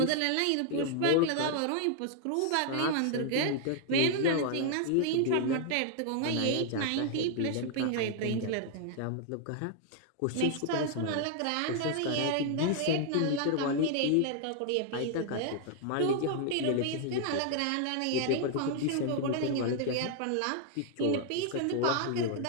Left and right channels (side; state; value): both; different; correlation 0.00